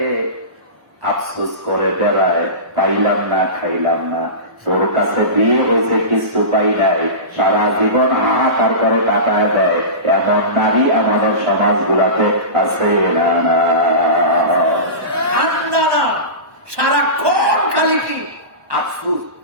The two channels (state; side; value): late; left; 1.2 ms